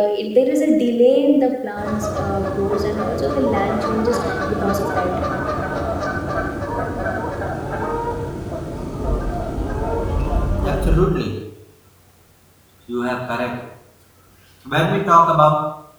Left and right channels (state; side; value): identical; both; correlation 1.00